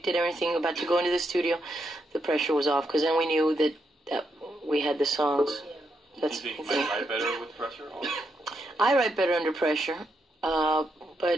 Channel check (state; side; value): normal; both; correlation 0.81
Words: it, everything, about to go into the studio, the pressure was off. Because then we knew that we had the songs. That's Do you think you might write better with pressure? Or? I write better under pressure.